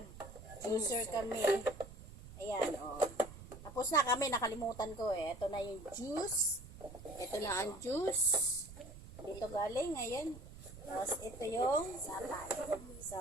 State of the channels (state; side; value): noise; right; rumble, 15 dB below the sound